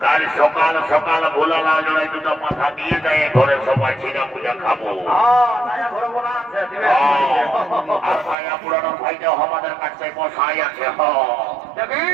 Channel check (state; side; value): drops out; left; at 8.3 s